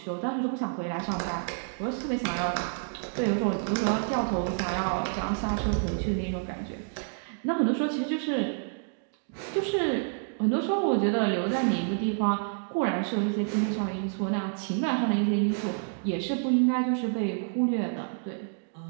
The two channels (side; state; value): left; silent; digital silence